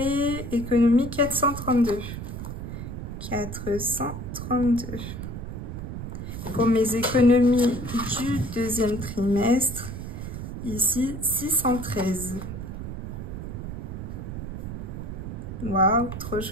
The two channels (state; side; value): noise; right; rumble, 7 dB below the sound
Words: économie 432. 432. Pour mes économies du deuxième trimestre, ici 613. Waouh, trop